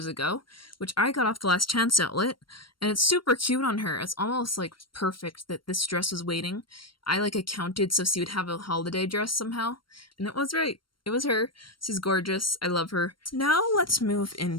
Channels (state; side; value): late; right; 0.73 ms